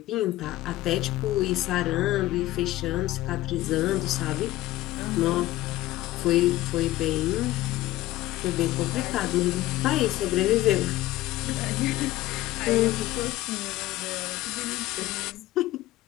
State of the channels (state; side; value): quieter; right; 16.3 dB